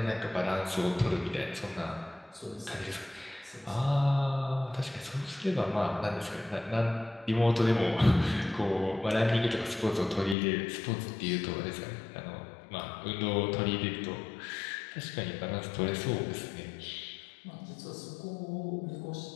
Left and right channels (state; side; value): drops out; right; at 10.4 s